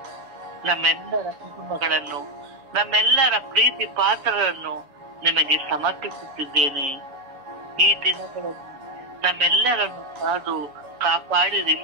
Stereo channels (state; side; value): late; left; 6.8 ms